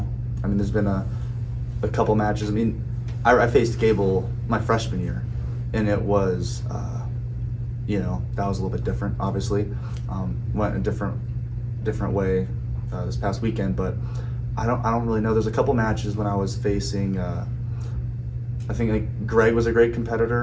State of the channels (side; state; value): both; identical; correlation 1.00